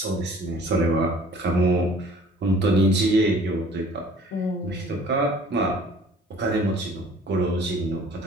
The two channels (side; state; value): both; normal; correlation 0.51